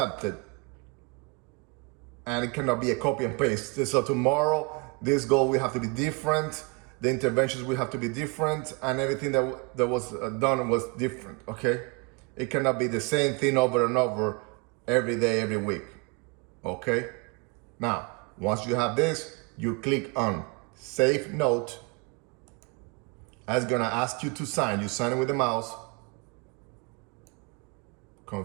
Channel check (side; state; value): left; quieter; 30.7 dB